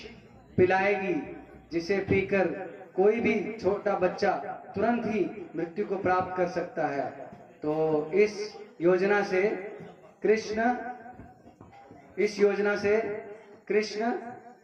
पिलाएगी, जिसे पीकर कोई भी छोटा बच्चा तुरंत ही मृत्यु को प्राप्त कर सकता है। तो इस योजना से कृष्ण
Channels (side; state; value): both; identical; correlation 1.00